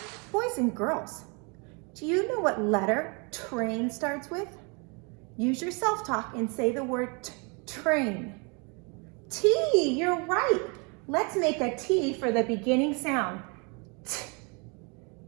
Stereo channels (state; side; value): quieter; left; 32.8 dB